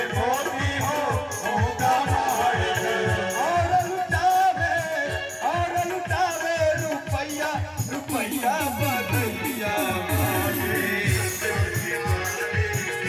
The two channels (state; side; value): identical; both; correlation 1.00